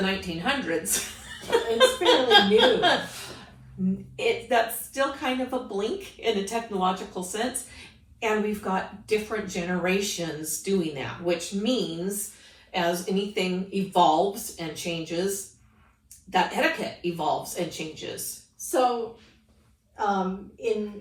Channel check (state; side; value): identical; both; correlation 1.00